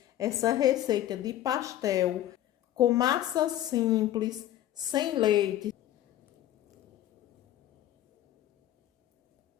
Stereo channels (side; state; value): right; quieter; 12.8 dB